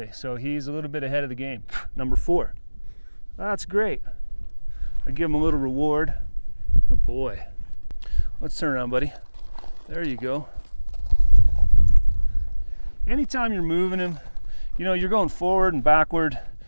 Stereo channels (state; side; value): inverted; both; correlation -1.00